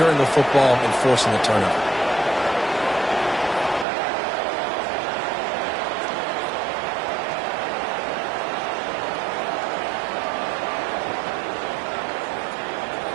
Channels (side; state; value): left; drops out; at 3.9 s